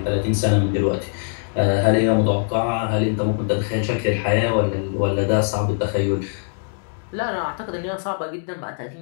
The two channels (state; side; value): silent; right; digital silence